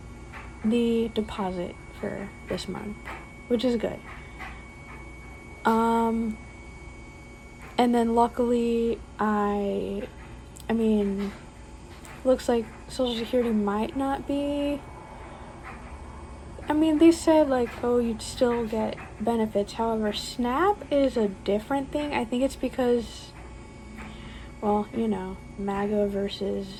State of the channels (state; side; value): identical; both; correlation 1.00